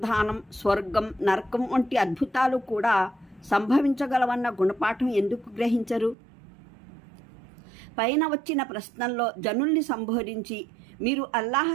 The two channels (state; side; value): drops out; left; at 6.2 s